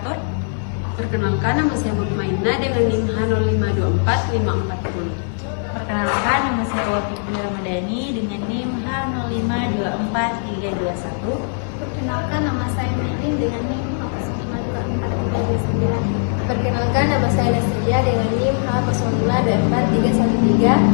Perkenalkan, nama saya Mukmaina dengan NIM H0524540. Perkenalkan, nama saya Wafiqah Ramadhani dengan NIM H0524321. Perkenalkan, nama saya Mehdi dengan NIM H0524329. Perkenalkan, nama saya Nasilia dengan NIM H0024313.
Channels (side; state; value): right; silent; 59 dB below the other